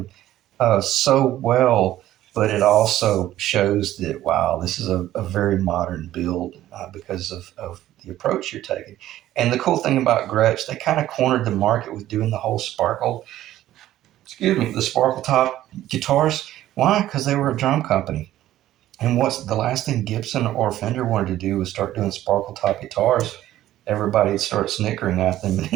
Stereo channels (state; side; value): quieter; left; 13.7 dB